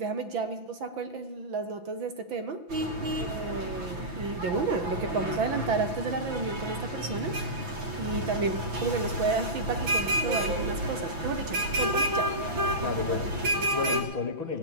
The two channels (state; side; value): late; left; 6.0 ms